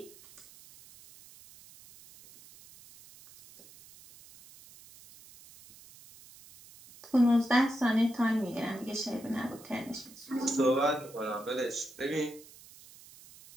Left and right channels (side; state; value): right; noise; hiss, 21 dB below the sound